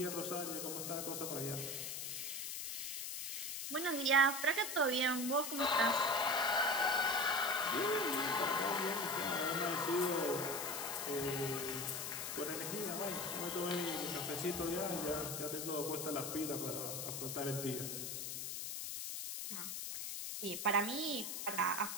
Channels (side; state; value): left; noise; hiss, 4 dB below the sound